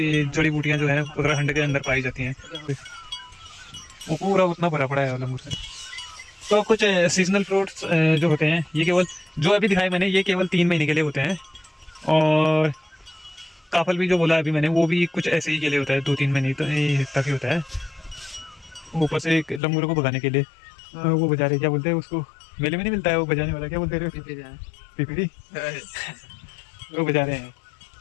जड़ी बूटियाँ जो है उत्तराखंड के अंदर पाई जाती हैं। वो पूरा उतना भरा पड़ा है अलमपुर से। तो कुछ सीजनल फ्रूट्स जो होते हैं, ये केवल जो अभी दिखाए मैंने, ये केवल 3 महीने के लिए होते हैं। और काफल भी जो बोला अभी मैंने, वो भी कुछ ऐसे ही के लिए होता है, 2-3 महीने तक ही होता है। ऊपर से एक लंगूरों को भगाने के लिए वो बजा रहे, क्या बोलते हैं उसको, मेले में नहीं मिलता है वो बजाने वाला, क्या बोलते हैं, पिपीरी वो बजा रहे हैं।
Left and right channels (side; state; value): right; drops out; at 19.6 s